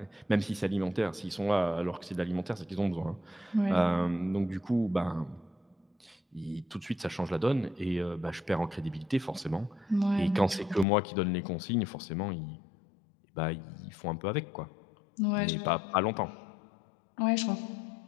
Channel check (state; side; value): drops out; right; at 10.9 s